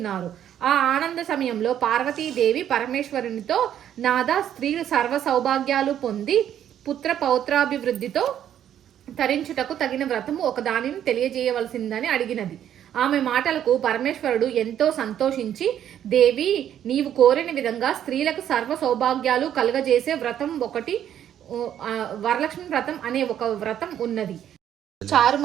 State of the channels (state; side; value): quieter; left; 10.3 dB